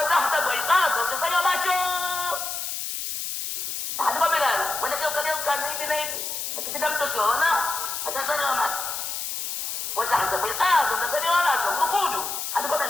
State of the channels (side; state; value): left; noise; hiss, 4 dB below the sound